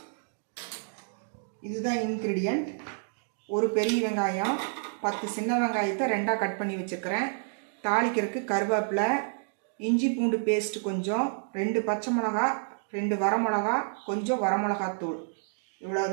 இதுதான் இன்க்ரீடியன்ட். ஒரு பெரிய வெங்காயம், 10 சின்ன வெங்காயத்தை 2ஆக கட் பண்ணி வச்சுருக்கிறேன். தாளிக்கிறதுக்கு கருவேப்பிலை, இஞ்சி பூண்டு பேஸ்ட் கொஞ்சம், 2 பச்சை மிளகா, 2 வரமிளகா, கொஞ்சம் வரமிளகாத்தூள்.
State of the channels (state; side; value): silent; left; digital silence